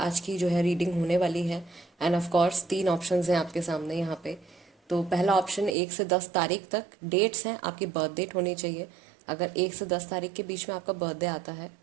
की जो है रीडिंग होने वाली है। एंड ऑफ कोर्स 3 ऑप्शंस हैं आपके सामने यहाँ पे। तो पहला ऑप्शन 1 से 10 तारीख तक डेट्स हैं, आपकी बर्थ डेट होनी चाहिए। अगर 1 से 10 तारीख के बीच में आपका बर्थडे आता है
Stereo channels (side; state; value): left; drops out; at 5.8 s